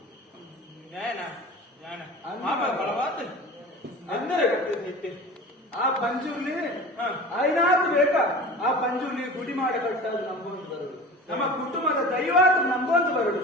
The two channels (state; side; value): normal; both; correlation 0.37